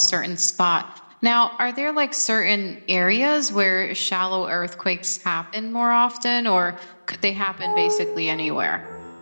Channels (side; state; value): both; inverted; correlation -1.00